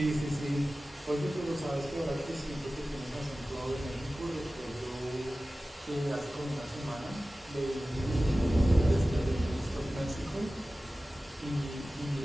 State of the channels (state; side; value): normal; both; correlation 0.96